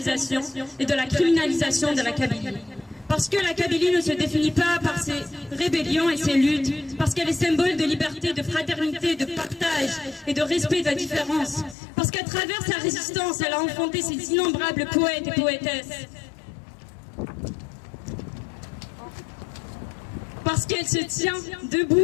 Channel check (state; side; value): drops out; right; at 11.8 s